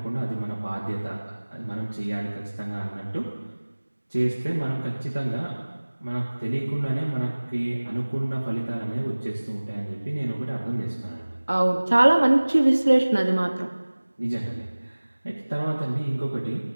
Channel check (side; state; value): both; inverted; correlation -1.00